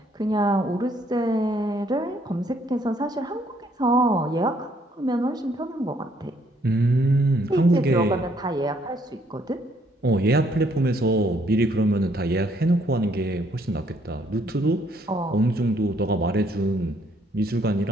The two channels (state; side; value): normal; both; correlation 0.68